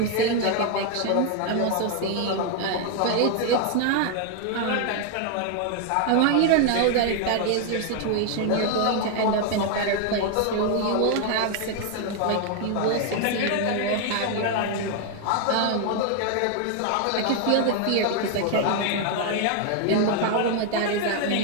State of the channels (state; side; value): different; both; correlation 0.01